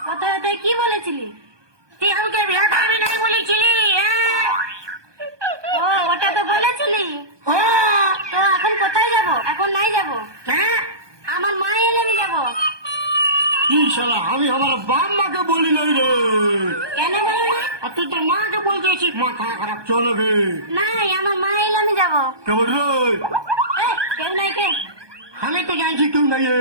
কোথায় কোথায় কি বলেছিলি? তুই আমাকে বিয়ে করবি নাই বলেছিলি? ও ওটা তো বলেছিলি। হ্যাঁ তো এখন কোথায় যাব? এখন নাই যাব, হ্যাঁ। আমার মা এলে আমি যাবো। ইনশাল্লাহ আমি আমার বাপ মাকে বলি নাই রে। কেন বলো না? আর তুই তোর মাকে বলতেছিস মাথা খারাপ চলবে। নাই, আমার মা এলে আমি যাবো। কেমন রে? কেউ নাই কে? আমি তো জানছি কেউ নাই।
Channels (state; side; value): late; left; 1.2 ms